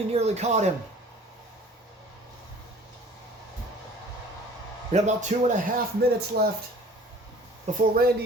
nearly caught him. We have about 2.5 minutes left before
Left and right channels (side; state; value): both; normal; correlation 0.49